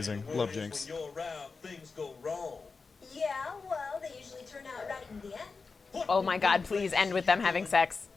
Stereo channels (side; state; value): right; quieter; 4.5 dB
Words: Love Jinx. When you're around, things go wrong. Yeah, well, they usually turn out right in the end. Oh my God! Please end with them having sex.